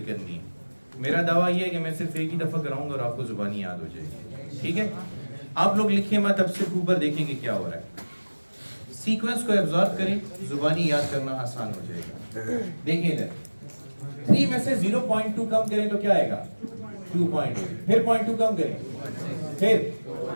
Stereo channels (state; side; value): inverted; both; correlation -1.00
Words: करनी है। मेरा दावा ये है कि मैं सिर्फ एक ही दफा कराऊंगा और आपको जुबानी याद हो जाएगी, ठीक है। आप लोग लिखिए मत, अब सिर्फ ऊपर देखेंगे क्या हो रहा है। सीक्वेंस को एब्जॉर्ब करें, जुबानी याद करना आसान हो जाएगा। देखिए इधर 3 में से 0.2 कम करें तो क्या आएगा 2.8, फिर 0.2 कम करें, फिर